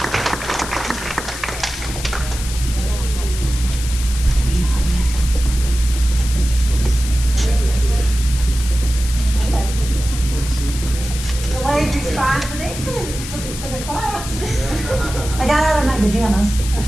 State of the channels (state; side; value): noise; left; hiss, 10 dB below the sound